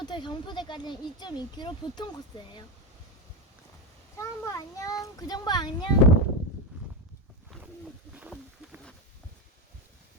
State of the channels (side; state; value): both; normal; correlation 0.13